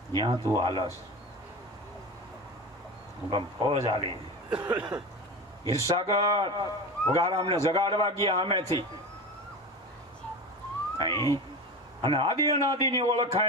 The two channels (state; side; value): normal; both; correlation 0.27